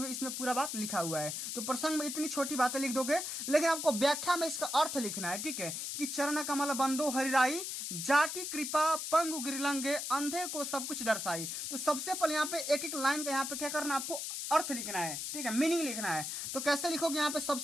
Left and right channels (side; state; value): left; noise; hiss, 4 dB below the sound